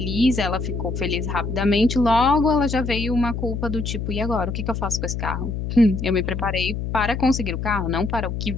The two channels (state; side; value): noise; left; hum, 4 dB below the sound